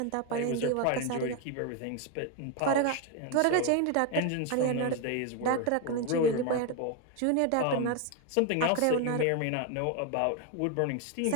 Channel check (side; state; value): both; different; correlation 0.01